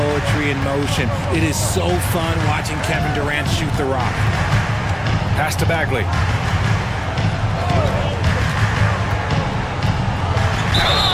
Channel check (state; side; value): identical; both; correlation 1.00